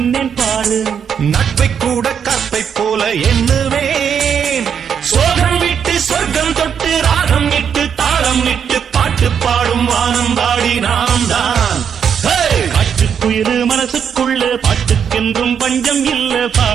பாரு. நட்பை கூட கற்பை போல எண்ணுவேன். சோகம் விட்டு சொர்க்கம் தொட்டு ராகம் இட்டு தாளம் இட்டு பாட்டு பாடும் வானம் பாடி நாம் தான். காற்றுக்குயிரு மனசுக்குள்ள பாட்டுக்கென்றும் பஞ்சம் இல்ல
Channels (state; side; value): quieter; left; 7.6 dB